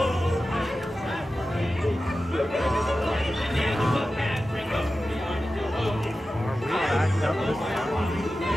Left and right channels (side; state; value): both; normal; correlation 0.93